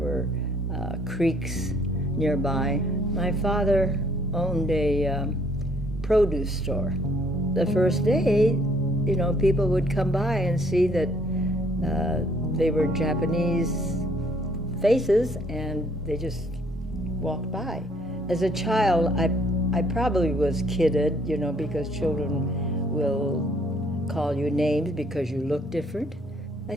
creeks nearby. My father owned a produce store. The first day, people would come by and see that they were Japanese faces, and they just walked by. As a child, I probably was kidded, because children will call you names because you look different. I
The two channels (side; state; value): both; normal; correlation 0.63